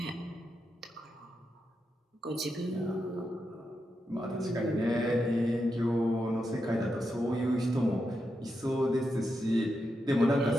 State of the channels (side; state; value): both; normal; correlation 0.86